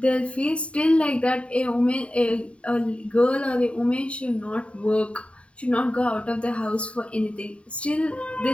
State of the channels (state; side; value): late; right; 0.061 ms